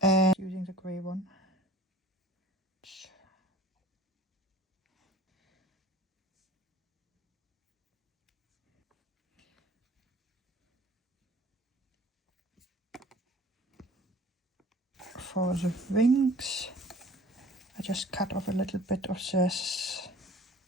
And using the grey one. For the wings, I just cut off a little bit of this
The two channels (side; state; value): both; normal; correlation 0.47